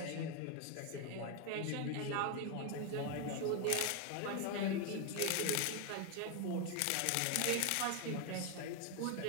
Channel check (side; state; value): both; different; correlation 0.01